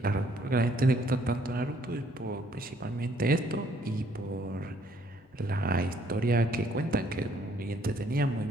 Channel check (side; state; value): both; normal; correlation 0.64